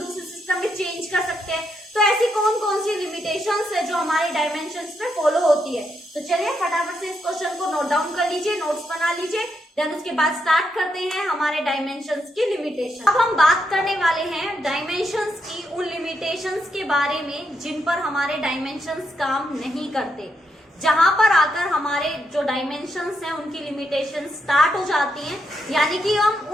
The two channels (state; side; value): normal; both; correlation 0.80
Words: सिस्टम में चेंज कर सकते हैं। तो ऐसी कौन कौन सी लिमिटेशंस है जो हमारी डायमेंशंस पे फॉलो होती है। तो चलिए फटाफट से इस क्वेश्चन को नोट डाउन कर लीजिए, नोट्स बना लीजिए, देन उसके बाद स्टार्ट करते हैं हमारे डायमेंशंस की लिमिटेशन। अब हम बात करने वाले हैं डायमेंशंस की उन लिमिटेशंस के बारे में जिन पर हमारे डायमेंशंस काम नहीं करते, जहां पर आकर हमारे जो डायमेंशंस हैं उनकी लिमिटेशन स्टार्ट हो जाती हैं। यानी कि हम